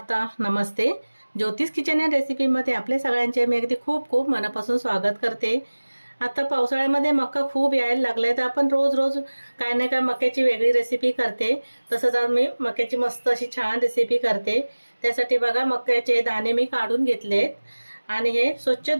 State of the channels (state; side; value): inverted; both; correlation -1.00